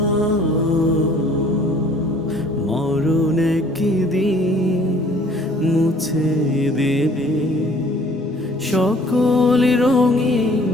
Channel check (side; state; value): both; normal; correlation 0.55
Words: মরণ একদিন মুছে দেবে সকল রঙিন